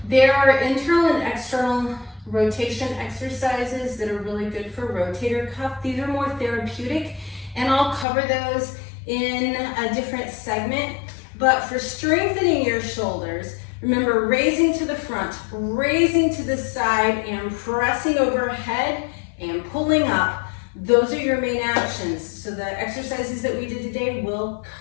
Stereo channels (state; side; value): drops out; right; at 8.1 s